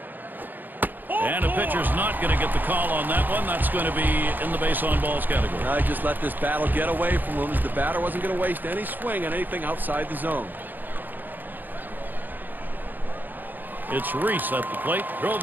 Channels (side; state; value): left; late; 0.088 ms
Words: And a pitcher's not going to get the call on that one. That's going to be in the base on balls category. I just let this battle get away from him, as the batter wasn't going to waste any swing on anything outside the zone. It's Reese at the plate. Drove